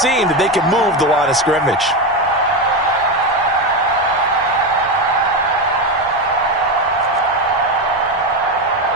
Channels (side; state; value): both; normal; correlation 0.14